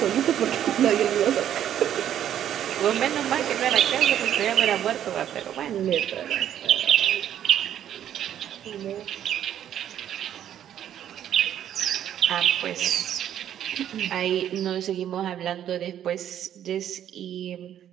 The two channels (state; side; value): quieter; left; 10.5 dB